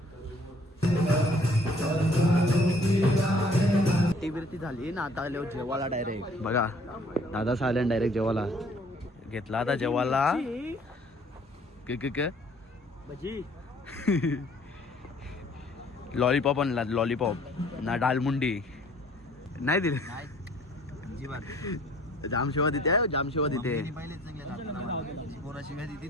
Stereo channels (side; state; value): both; normal; correlation 0.57